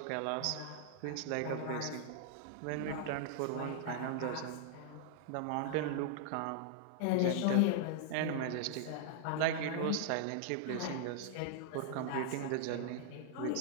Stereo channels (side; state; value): both; different; correlation -0.01